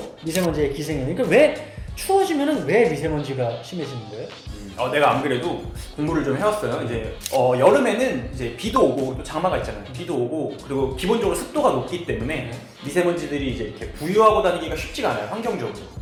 미세먼지의 기생이. 그러니까 왜 추워지면은 왜 미세먼지가 심해지는 거예요? 내가 안 그래도 공부를 좀 해왔어요. 이제 여름에는 이제 비도 오고 또 장마가 있잖아요. 비도 오고 그리고 기본적으로 습도가 높기 때문에 미세먼지들이 이제 이렇게 부유하고 다니기가 쉽지가 않아요. 환경적으로.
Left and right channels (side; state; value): both; identical; correlation 1.00